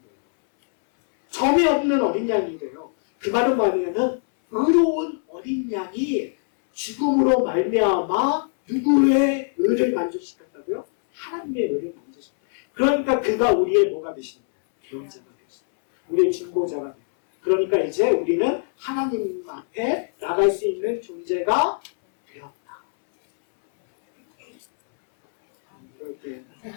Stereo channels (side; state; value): right; silent; 64 dB below the other